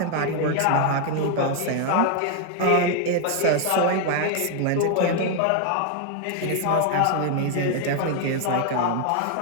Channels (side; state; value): both; different; correlation 0.00